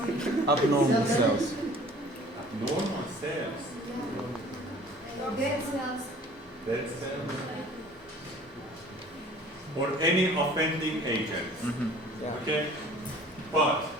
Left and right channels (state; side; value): normal; both; correlation 0.50